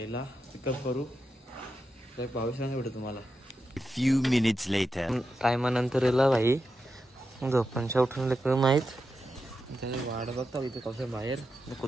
पिकअप करू. भावीस भेटू तुम्हाला. few minutes later. टायमानंतर येला भाई झोपांच्या उठून लेकर माहीत त्याने वाट बघता इथे कसं बाहेर.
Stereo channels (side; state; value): both; normal; correlation 0.88